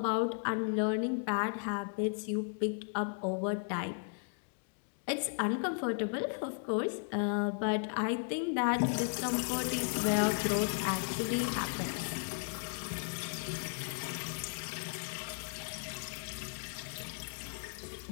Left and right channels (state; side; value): silent; right; digital silence